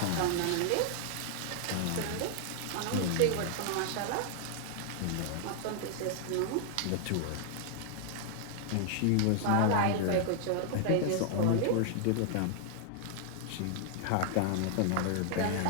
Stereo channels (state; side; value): different; both; correlation 0.00